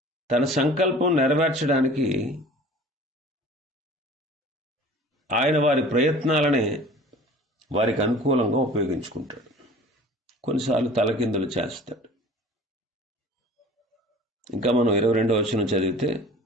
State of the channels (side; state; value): both; normal; correlation 0.44